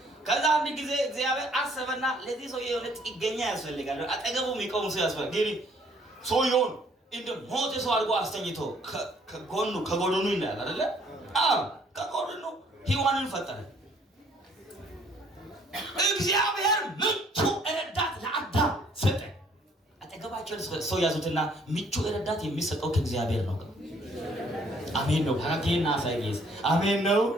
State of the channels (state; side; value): normal; both; correlation 0.62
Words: ከዛ አንድ ጊዜ እግዚአብሔር አሰበና ለዚህ ሰው የሆነ ጥገኛ ያስፈልጋል፣ አጠገቡ የሚቆም ሰው ያስፈልጋል። ግን ሰውየውን እንደ ሞተ ሰው አድርጎ አስተኝቶ ከጎኑ ይላል አይደለ? አዎ ከጎኑ ሔዋንን ፈጠረ። እግዚአብሔር ምቹ ረዳት ለአዳም ሰጠ። አጠገባቸው ሰው ያዙትና ምቹ ረዳት የሚሰጠው ከእግዚአብሔር ነው። አሜን ነው። ሀራጌና ሳይጌስ አሜን ነው።